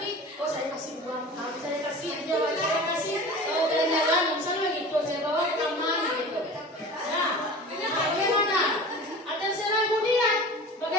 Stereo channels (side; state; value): both; normal; correlation 0.37